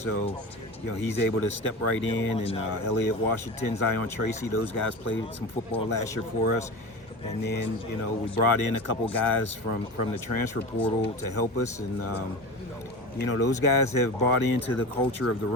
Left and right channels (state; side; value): normal; both; correlation 0.29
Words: he's able to step right in, and Elliott Washington, Zion Tracy, those guys played some football last year for us. And then, we brought in a couple guys from the transfer portal to help us. And, those guys have bought into the culture of the